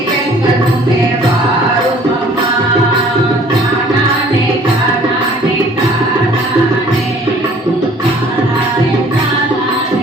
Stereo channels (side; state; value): both; normal; correlation 0.54